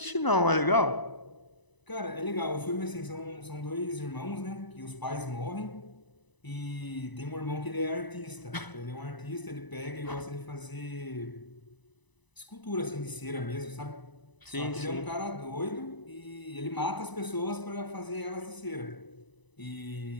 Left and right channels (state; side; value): late; right; 1.0 ms